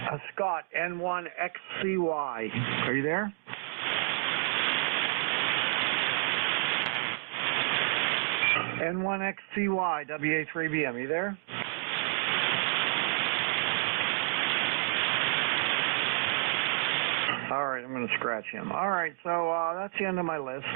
Scott N1XCY. Are you there? N1XCY, WA3BM. Are you there? All right, I'm going to scratch him. All right, so that's the end of my list.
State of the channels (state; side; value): silent; left; digital silence